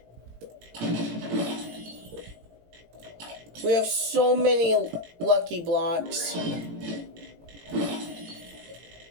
We have so many lucky blocks.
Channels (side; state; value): left; late; 18 ms